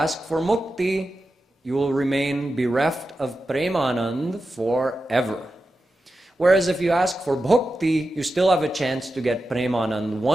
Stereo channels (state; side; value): normal; both; correlation 0.91